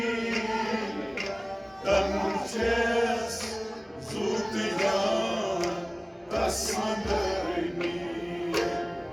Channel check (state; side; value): identical; both; correlation 1.00